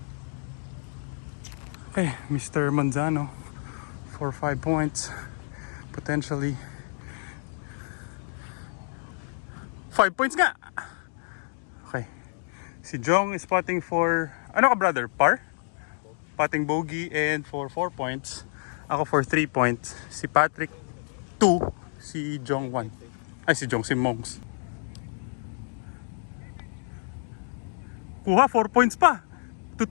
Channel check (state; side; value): silent; right; 59 dB below the other